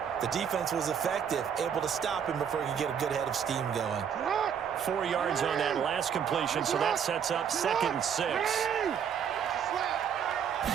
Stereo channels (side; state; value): left; quieter; 7.9 dB